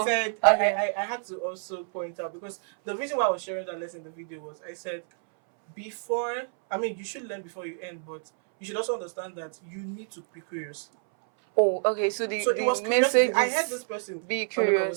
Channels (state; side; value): silent; left; 59 dB below the other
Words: I said I had to also point out, because the reason why I was sharing that lesson in the video was I said you should learn before you end, but you should also understand that you need to be curious. Oh, okay. So the message is, I heard this person be